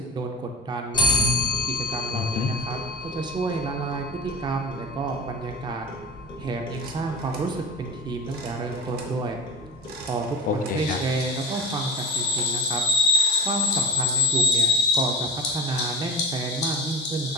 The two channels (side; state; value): both; normal; correlation 0.31